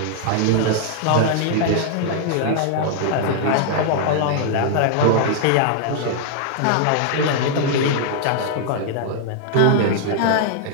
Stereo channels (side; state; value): both; different; correlation -0.01